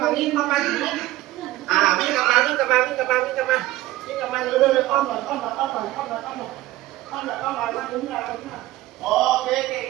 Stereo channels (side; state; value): left; quieter; 16.5 dB